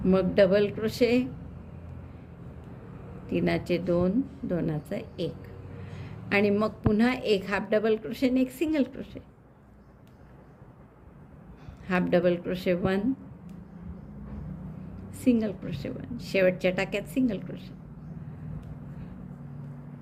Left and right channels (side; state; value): both; identical; correlation 1.00